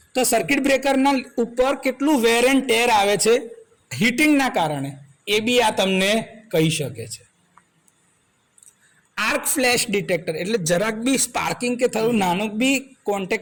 તો સર્કિટ બ્રેકરના ઉપર કેટલું વેર એન્ડ ટેર આવે છે હીટિંગના કારણે, એ બી આ તમને કહી શકે છે. આર્ક ફ્લેશ ડિટેક્ટર એટલે જરાક બી સ્પાર્કિંગ કે થયું નાનું બી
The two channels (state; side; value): identical; both; correlation 1.00